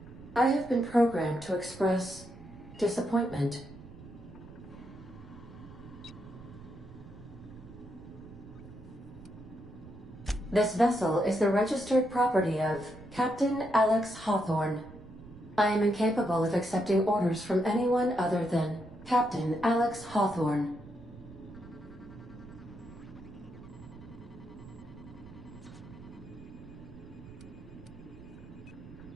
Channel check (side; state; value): right; noise; rumble, 18 dB below the sound